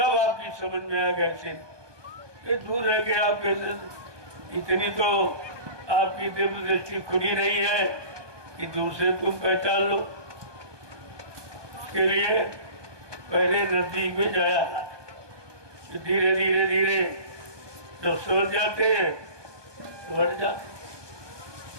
आपकी समझ में आ गया ये दूर रह के आप कैसे, इतनी तो आपकी दिव्य दृष्टि खुली नहीं है कि दूर से तुम पहचान लो। इसके लिए पहले नजदीक में जाया, धीरे धीरे धीरे जब समझ जाते हैं तो बढ़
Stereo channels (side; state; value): left; late; 1.2 ms